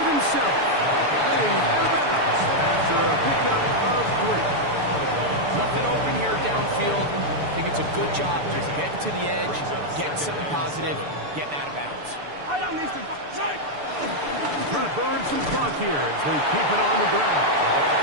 himself. Playing out of bounds after a pickup of 3. Nothing open here downfield. I think it's a good job just getting to the edge, getting something positive, getting out of bounds. Trying to burn some clock here as they keep it on the ground.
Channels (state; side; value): late; left; 6.8 ms